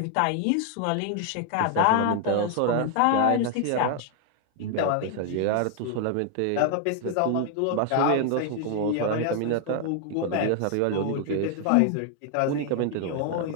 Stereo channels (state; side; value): different; both; correlation 0.00